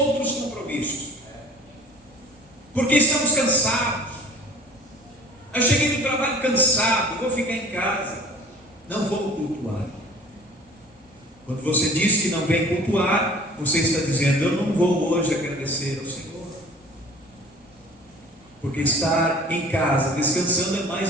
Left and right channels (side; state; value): both; normal; correlation 0.46